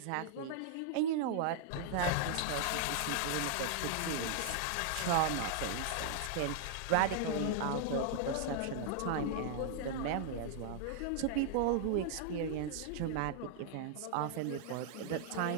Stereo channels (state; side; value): different; both; correlation -0.01